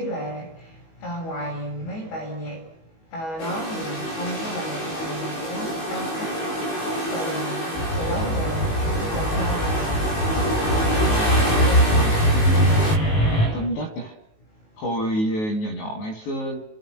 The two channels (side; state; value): right; late; 19 ms